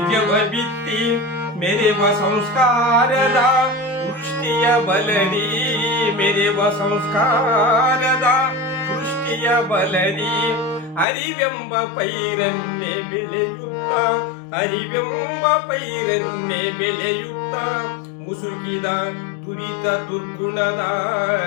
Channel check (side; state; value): right; drops out; at 11.1 s